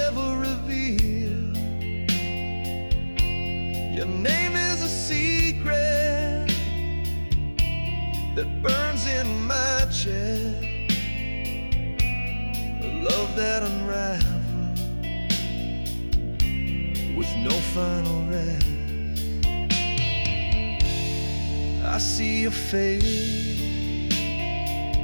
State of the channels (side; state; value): both; inverted; correlation -1.00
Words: revealed. Your name is a secret that burns in my chest, a love that unravels with no final rest. I see your face